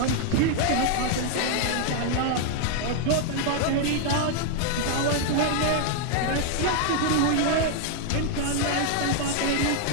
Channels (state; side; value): different; both; correlation 0.00